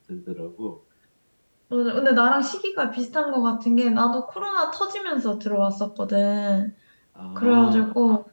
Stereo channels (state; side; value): inverted; both; correlation -1.00